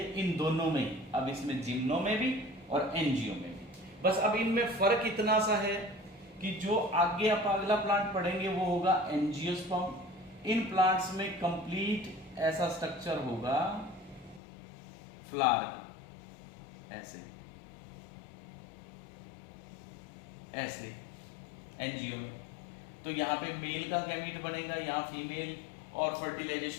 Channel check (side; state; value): right; drops out; at 14.4 s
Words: इन दोनों में ही। अब इसमें जिम्नो में भी और एंजियो में भी, बस अब इनमें फर्क इतना सा है कि जो आगे आप अगला प्लांट पढ़ेंगे वो होगा एंजियोस्पर्म। इन प्लांट्स में कंप्लीट ऐसा स्ट्रक्चर होगा फ्लावर का, ऐसे ऐसे एंजियो में। तो यहाँ पे मेल का गैमीट बनेगा, यहाँ फीमेल, और